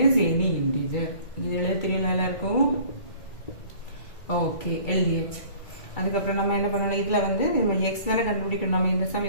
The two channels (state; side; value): late; right; 2.3 ms